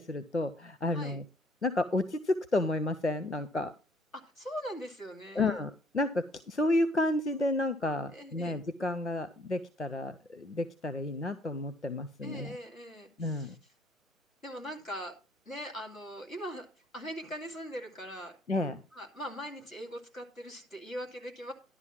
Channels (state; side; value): normal; both; correlation 0.63